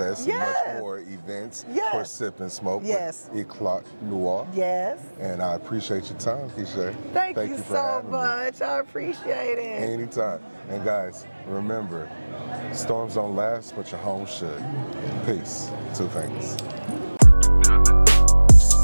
Yes. and much more events Yes. for Sip and Smoke Yes. with Eclat Noir. Yes. And I appreciate your time, Keisha. Thank you for so having me. much. I appreciate it. Anytime. And guys, remember, storms don't last, but your home should. Peace. Two things.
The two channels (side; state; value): both; inverted; correlation -1.00